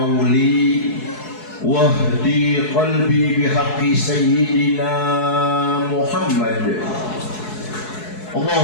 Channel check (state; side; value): late; right; 4.7 ms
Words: wahdi qalbi bihaqqi sayyidina Muhammad.